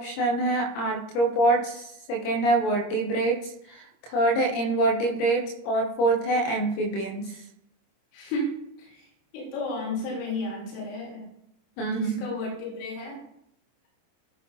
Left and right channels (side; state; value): right; late; 26 ms